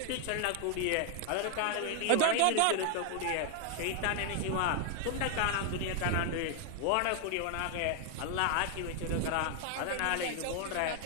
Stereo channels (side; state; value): both; different; correlation 0.00